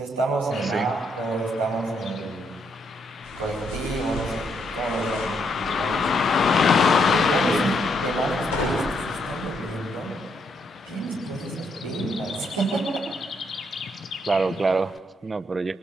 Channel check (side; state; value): both; normal; correlation 0.75